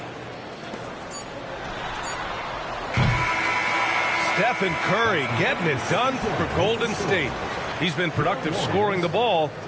Stephen Curry getting it done for Golden State. He's been productive scoring the ball.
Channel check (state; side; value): identical; both; correlation 1.00